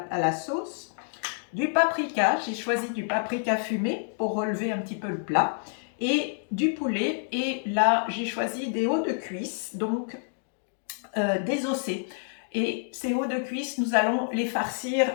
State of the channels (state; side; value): silent; right; digital silence